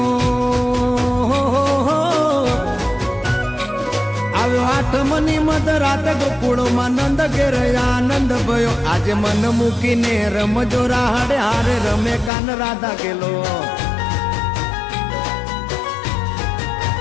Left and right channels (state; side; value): drops out; right; at 12.3 s